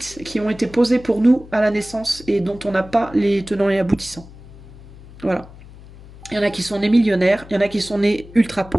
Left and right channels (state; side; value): noise; left; hum, 19 dB below the sound